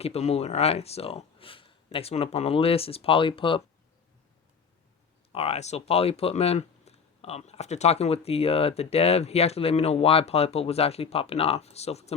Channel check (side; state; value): right; quieter; 6.0 dB